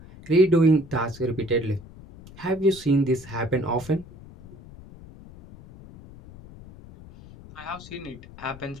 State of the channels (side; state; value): left; noise; rumble, 19 dB below the sound